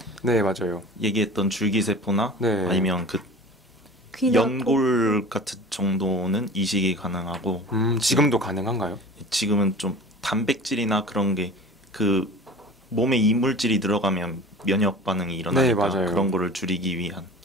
네, 맞아요. 얘기했던 줄기세포나 네. 아니면 그 귀나 연골 같은 정도는 이식이 가능하고 지금도 가능한가요? 지금은 좀 단백질이나 그런 게 그 몸에 이물질이 들어가면 면역 반응이 일어나니까 네, 맞아요. 그런 거를 줄이기 위한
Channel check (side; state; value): both; normal; correlation 0.39